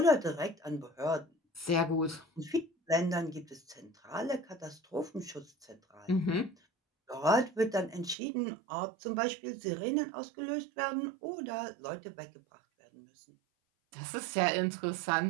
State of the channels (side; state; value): left; drops out; at 8.2 s